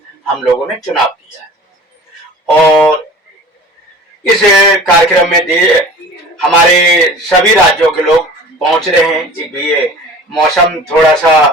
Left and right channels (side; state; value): both; normal; correlation 0.42